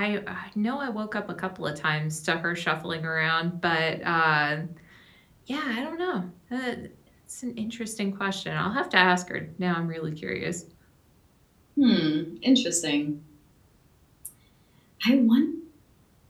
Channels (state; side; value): identical; both; correlation 1.00